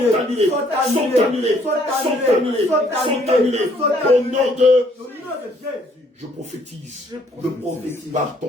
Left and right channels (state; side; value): normal; both; correlation 0.64